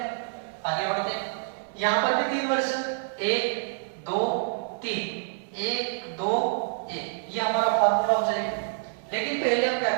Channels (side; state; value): left; silent; 60 dB below the other